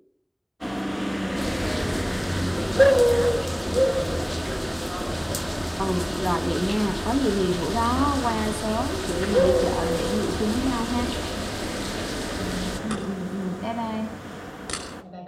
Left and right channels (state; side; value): identical; both; correlation 1.00